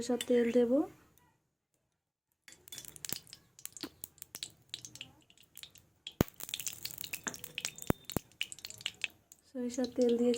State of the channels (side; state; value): both; identical; correlation 1.00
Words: তেল দেব। সরিষার তেল